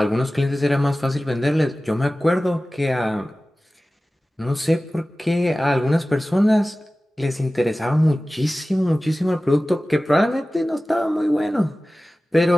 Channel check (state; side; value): normal; both; correlation 0.97